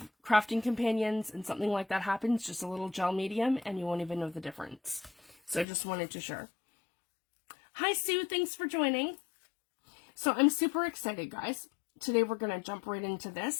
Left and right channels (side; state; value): right; drops out; at 5.7 s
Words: crafting companions and something like that happens, just a little gel medium, and you won't even know the difference. So I just wanted to share. Hi, Sue. Thanks for joining. So I'm super excited, guys. Today we're going to jump right into